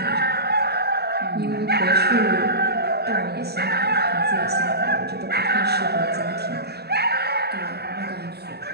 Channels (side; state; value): left; late; 0.47 ms